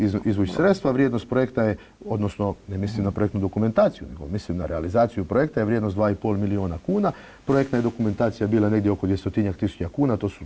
izvući sredstva. Vrijednost projekta je, odnosno ne mislim na projektnu dokumentaciju, nego mislim na realizaciju projekta, je vrijednost 2,5 milijuna kuna. Projektna je dokumentacija bila negdje oko 200.000 kuna,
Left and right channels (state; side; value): identical; both; correlation 1.00